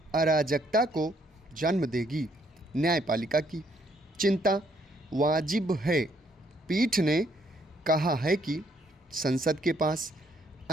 अराजकता को जन्म देगी। न्यायपालिका की चिंता वाजिब है। पीठ ने कहा है कि संसद के पास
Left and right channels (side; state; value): both; normal; correlation 0.69